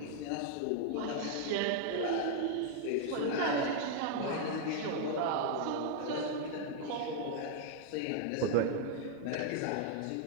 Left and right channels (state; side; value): different; both; correlation 0.00